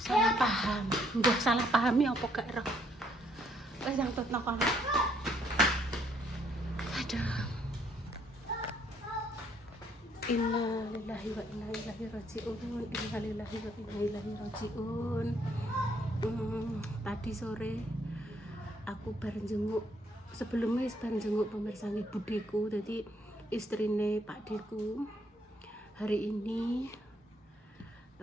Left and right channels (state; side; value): normal; both; correlation 0.69